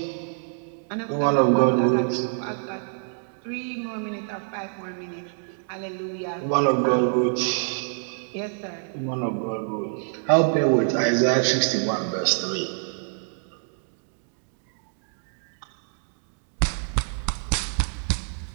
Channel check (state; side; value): silent; left; digital silence